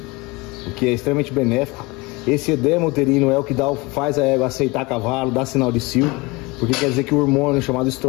o que é extremamente benéfico. Esse edema uterino é o que faz a égua aceitar cavalo, dá sinal de cio, porque quer dizer que o hormônio chamado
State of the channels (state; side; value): quieter; right; 24.6 dB